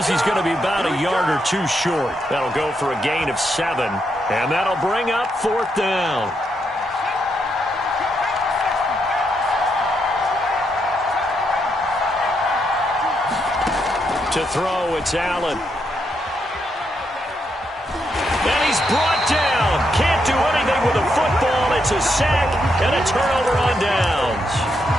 he's going to be about a yard or 2 short. That'll go for a gain of 7, and that'll bring up 4th down. To throw, it's Allen. And he's brought down. Can't do anything with the football. It's a sack and a turnover on downs.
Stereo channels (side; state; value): both; normal; correlation 0.80